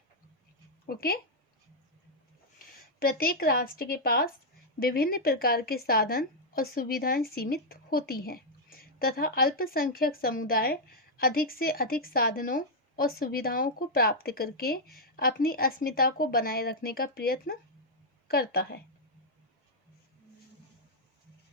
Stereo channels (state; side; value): normal; both; correlation -0.04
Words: ओके? प्रत्येक राष्ट्र के पास विभिन्न प्रकार के साधन और सुविधाएं सीमित होती हैं तथा अल्पसंख्यक समुदाय अधिक से अधिक साधनों और सुविधाओं को प्राप्त करके अपनी अस्मिता को बनाए रखने का प्रयत्न करता है.